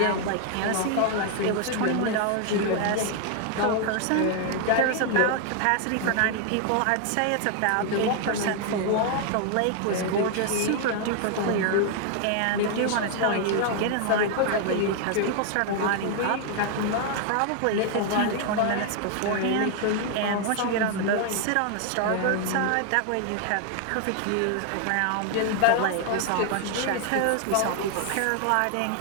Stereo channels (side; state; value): both; different; correlation 0.00